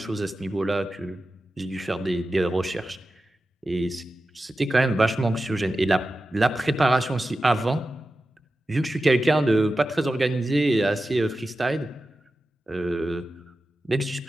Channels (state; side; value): normal; both; correlation 0.93